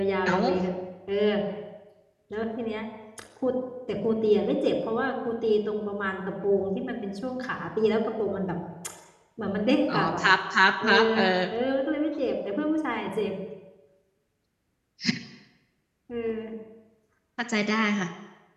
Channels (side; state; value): both; identical; correlation 1.00